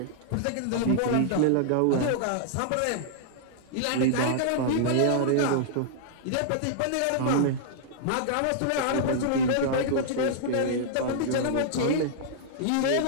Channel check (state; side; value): different; both; correlation -0.01